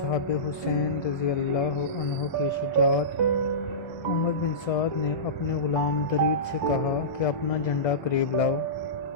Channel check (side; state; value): right; late; 1.3 ms